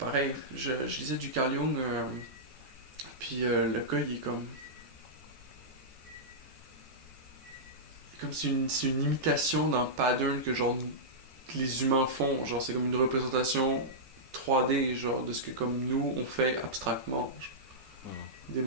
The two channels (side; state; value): left; late; 14 ms